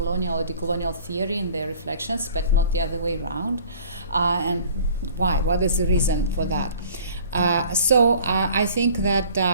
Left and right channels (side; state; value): both; inverted; correlation -0.49